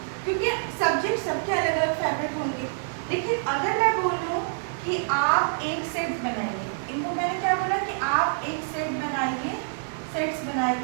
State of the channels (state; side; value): silent; left; digital silence